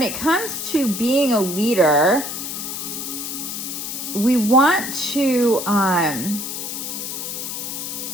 it comes to being a leader, we want to, I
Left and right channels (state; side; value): noise; left; hiss, 5 dB below the sound